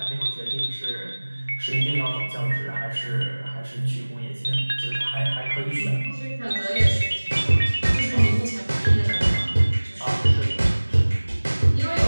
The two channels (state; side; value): inverted; both; correlation -1.00